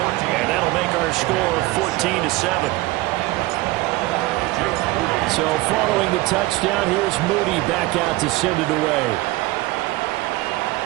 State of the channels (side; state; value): left; quieter; 19.9 dB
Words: And that'll make our score 14-7. So following the touchdown, here's Moody back out to send it away.